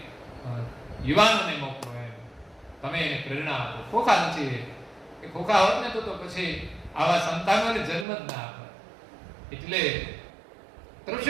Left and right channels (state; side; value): drops out; left; at 8.1 s